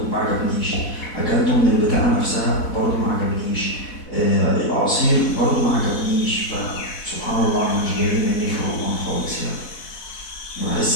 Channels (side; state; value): right; late; 4.1 ms